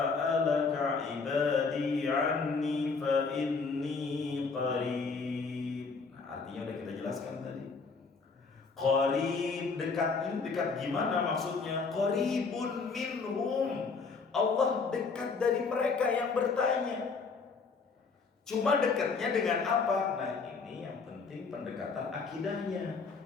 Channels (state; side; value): quieter; right; 4.7 dB